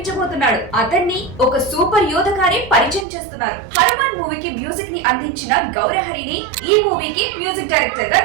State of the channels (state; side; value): drops out; left; at 3.1 s